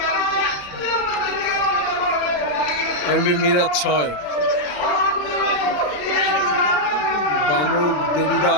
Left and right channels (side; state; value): right; late; 33 ms